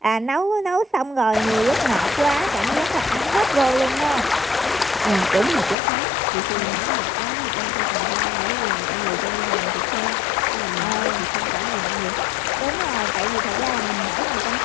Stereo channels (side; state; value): right; drops out; at 5.8 s